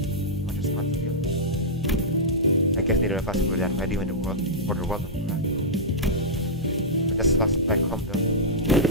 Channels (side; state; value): both; normal; correlation -0.11